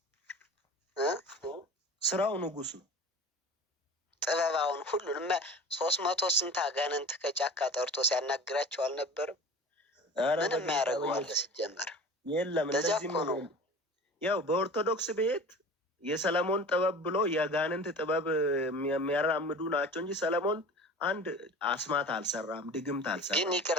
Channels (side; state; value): both; normal; correlation 0.38